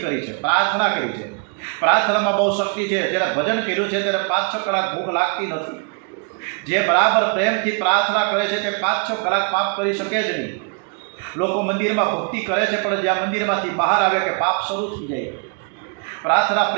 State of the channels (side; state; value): left; quieter; 36.0 dB